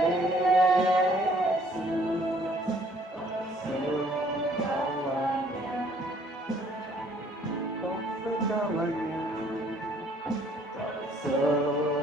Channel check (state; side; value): normal; both; correlation 0.61